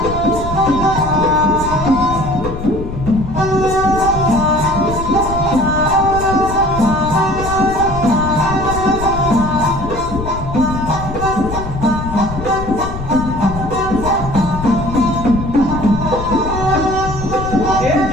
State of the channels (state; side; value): noise; left; rumble, 8 dB below the sound